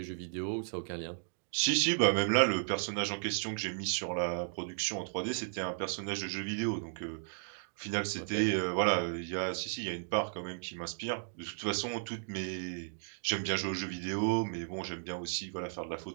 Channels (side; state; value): left; silent; digital silence